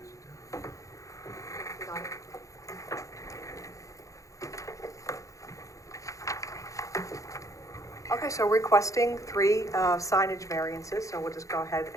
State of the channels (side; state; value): right; late; 0.16 ms